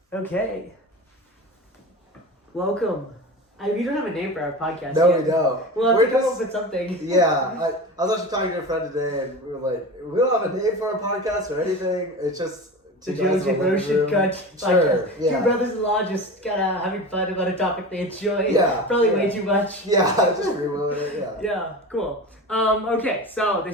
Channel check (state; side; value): normal; both; correlation 0.30